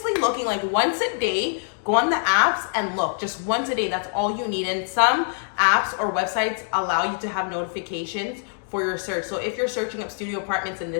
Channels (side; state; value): right; silent; 62 dB below the other